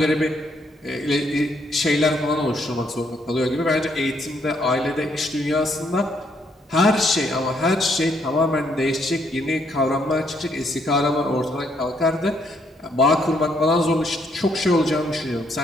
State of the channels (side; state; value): both; normal; correlation 0.72